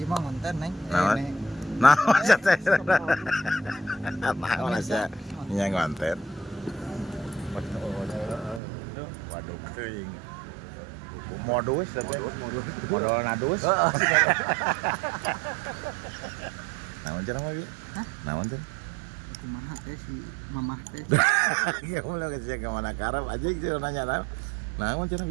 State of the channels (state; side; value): drops out; left; at 8.6 s